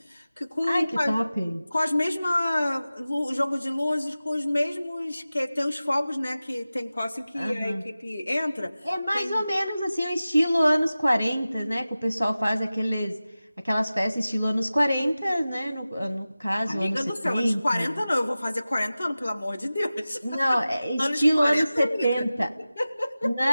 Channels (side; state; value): both; inverted; correlation -0.96